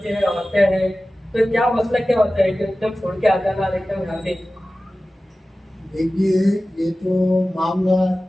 हैं, औरतें हैं, तो क्या मसला क्या होता है कि एकदम छोड़ के आ जाना एकदम यहाँ पे? देखिए, ये तो मामला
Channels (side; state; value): both; normal; correlation 0.96